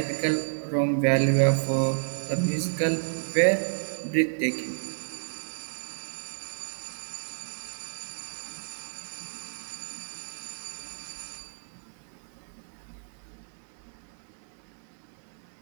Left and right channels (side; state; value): left; silent; 57 dB below the other